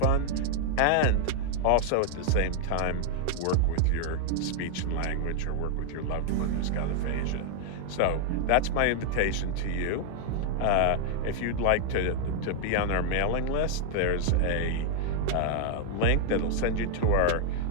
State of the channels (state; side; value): different; both; correlation 0.00